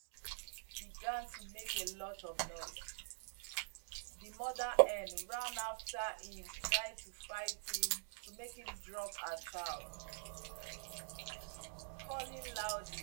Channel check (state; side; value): silent; left; digital silence